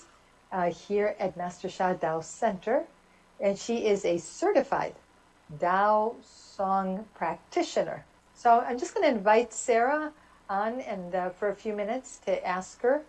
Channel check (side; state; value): both; identical; correlation 1.00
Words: here at Master Sha Tao Center, and she is a certified Tao Song practitioner. So I'm just going to invite Sarah on and for a few minutes to ask her